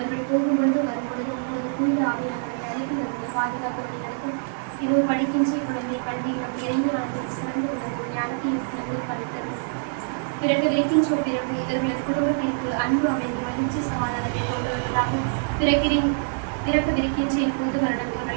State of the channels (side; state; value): left; silent; 55 dB below the other